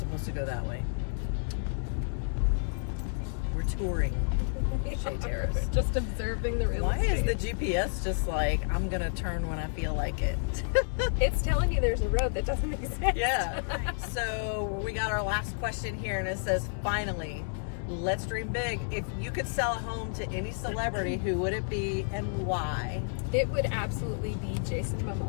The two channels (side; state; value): right; silent; digital silence